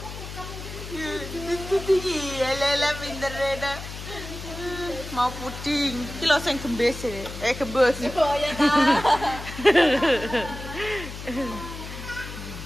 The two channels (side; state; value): left; noise; hum, 10 dB below the sound